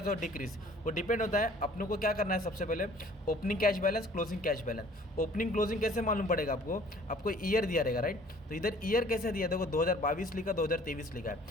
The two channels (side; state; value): both; normal; correlation 0.53